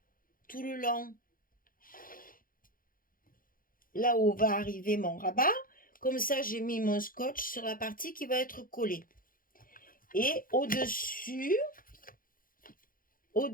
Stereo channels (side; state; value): right; late; 0.41 ms